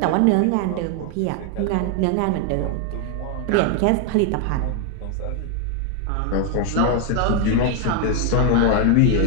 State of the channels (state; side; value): different; both; correlation 0.01